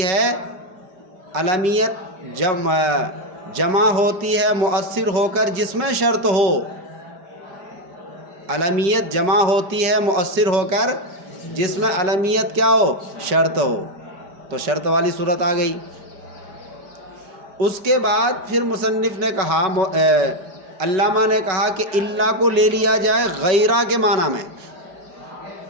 ہے، علمیت جمع ہوتی ہے مؤثر ہو کر جس میں شرط ہو، علمیت جمع ہوتی ہے مؤثر ہو کر جس میں علمیت کیا ہو، شرط ہو، تو شرط والی صورت آ گئی۔ اس کے بعد پھر مصنف نے کہا، علامہ نے کہا کہ اللہ کو لے لیا جائے غیرہ کے معنی میں۔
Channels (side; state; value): left; late; 5.3 ms